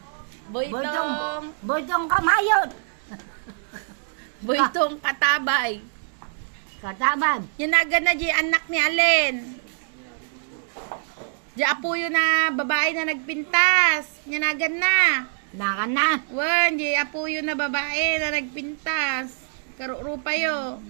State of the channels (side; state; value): left; silent; digital silence